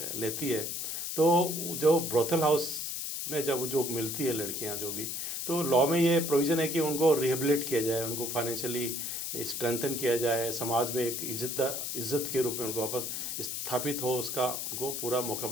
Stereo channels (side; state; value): left; noise; hiss, 3 dB below the sound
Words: लेती है, तो जो ब्रोथल हाउस में जब जो मिलती है लड़कियां जो भी, तो लॉ में ये प्रोविज़न है कि उनको रिहेबिलिट किया जाए, उनको फाइनेंशियली स्ट्रेंथन किया जाए, समाज में एक इज्जत के रूप में उनको वापस स्थापित हो, उसका उनको पूरा मौका